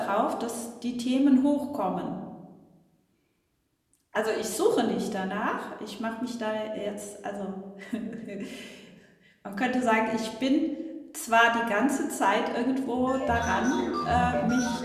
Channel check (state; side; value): identical; both; correlation 1.00